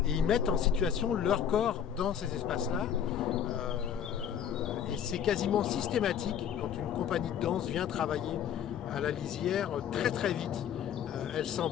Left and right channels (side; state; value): right; quieter; 8.9 dB